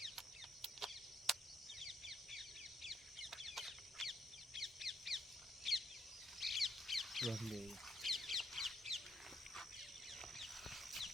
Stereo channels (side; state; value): both; normal; correlation 0.74